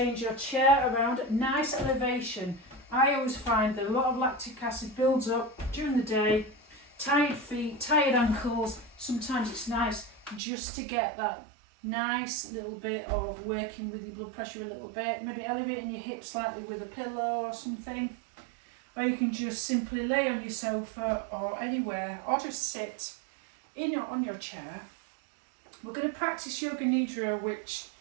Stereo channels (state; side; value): drops out; left; at 10.4 s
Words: your chair around at nice elevation. I always find that a lot of lactic acid builds up during the day, tired feet, tired ankles. Sometimes it's nice just to get that nice little bit of working with your blood pressure a little bit, maybe elevating your hips slightly with a pillow or something. Or you can just simply lay on your sofa or anywhere, or just sit on your chair. We're going to practice Yoga Nidra, which